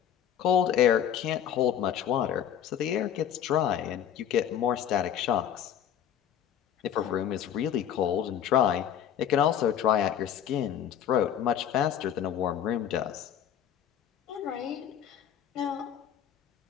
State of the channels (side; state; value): right; quieter; 9.7 dB